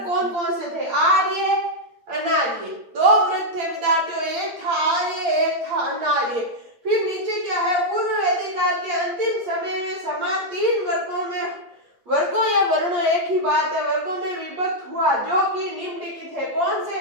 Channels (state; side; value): late; left; 8.6 ms